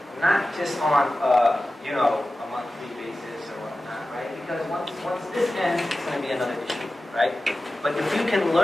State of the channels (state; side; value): normal; both; correlation 0.95